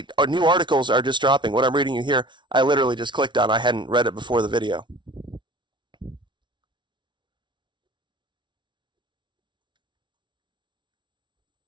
our new articles are just dropping. What I'm reading you here, I literally just clicked on. I hadn't read it before the video.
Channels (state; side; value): late; left; 0.23 ms